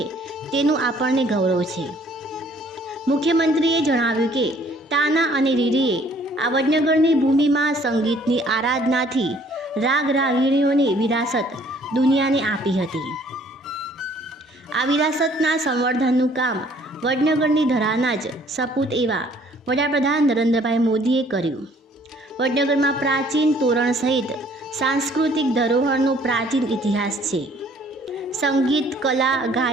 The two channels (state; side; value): normal; both; correlation 0.59